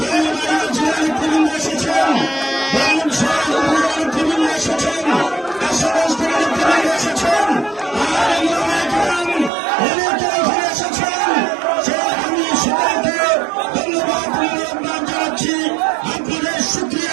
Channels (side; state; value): left; drops out; at 9.5 s